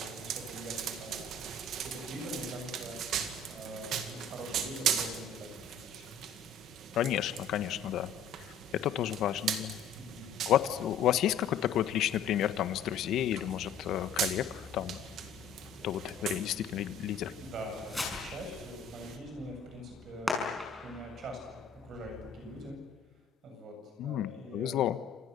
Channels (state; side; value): quieter; right; 4.6 dB